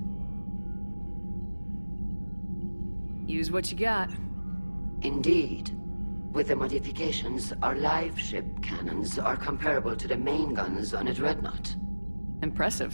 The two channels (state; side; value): inverted; both; correlation -1.00